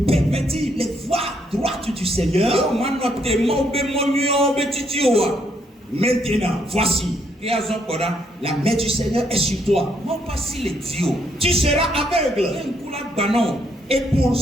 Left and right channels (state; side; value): normal; both; correlation 0.73